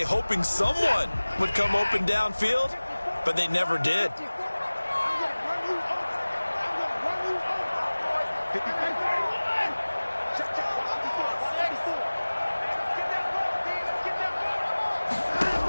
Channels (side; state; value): both; inverted; correlation -1.00